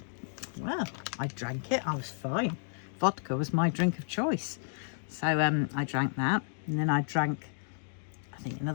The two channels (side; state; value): right; silent; digital silence